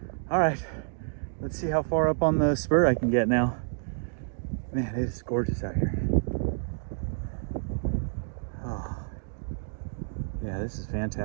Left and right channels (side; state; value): left; silent; digital silence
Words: All right, let's see how far up on the spur I can get now. Man, it is gorgeous out here. Oh, yeah, this is